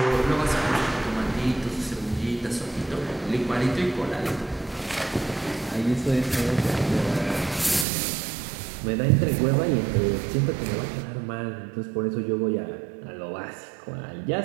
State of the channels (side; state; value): left; drops out; at 7.9 s